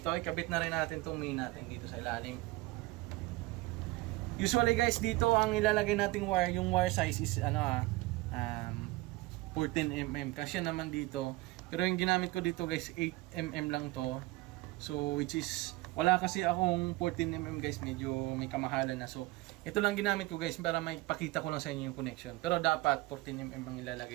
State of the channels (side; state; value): left; quieter; 20.5 dB